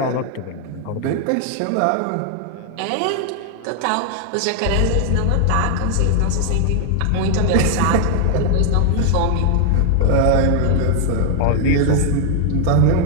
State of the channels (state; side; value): different; both; correlation 0.00